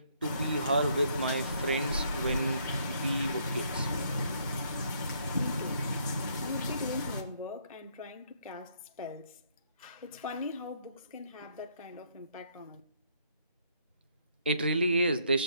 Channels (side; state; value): both; inverted; correlation -0.69